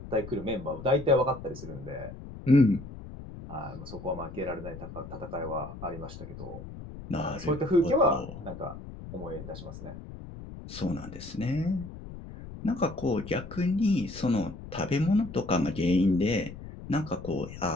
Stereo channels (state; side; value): noise; left; rumble, 12 dB below the sound